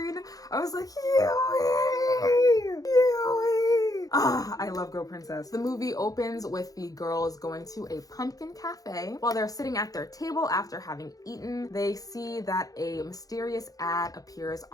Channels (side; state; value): right; late; 0.17 ms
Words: I was like, Yui! Yui! I love Go Princess. The movie opens with the girls going to a pumpkin cafe. While they're sitting at their table after having eaten, they see that a mysterious ad appears